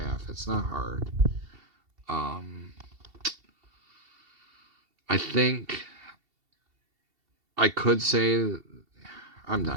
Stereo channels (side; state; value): left; late; 2.7 ms